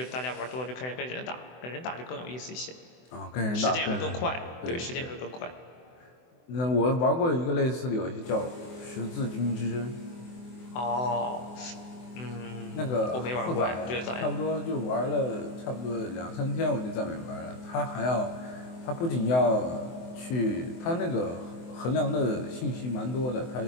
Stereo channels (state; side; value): late; right; 24 ms